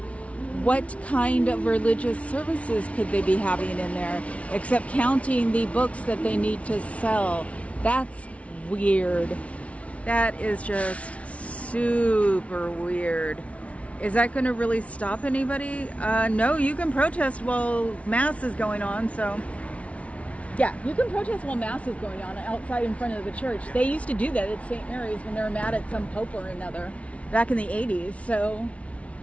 What kind of religious services could they be having in there, except counting the books that they need to sell? That's weird. That is just super weird. Is that going to really stop anybody? No, you can protest while Mass is going on, so... Yeah, you can protest while Mass is going on outside in front of the church. They used to do that at St. Mary's when they were mad at some pope or another back in the 80s, so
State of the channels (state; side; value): late; right; 0.064 ms